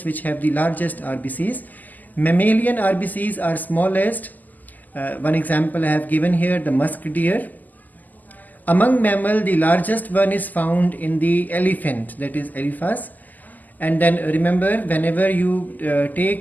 which have the largest RBCs. Mammalian RBCs are smallest. One example I have given here, the musk deer. Among mammal, the largest one is found in the elephant, that is Elephas. And then remember, whenever you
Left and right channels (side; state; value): right; late; 0.083 ms